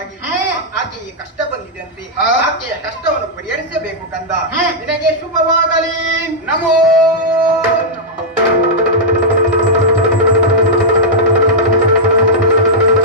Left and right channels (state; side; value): normal; both; correlation -0.07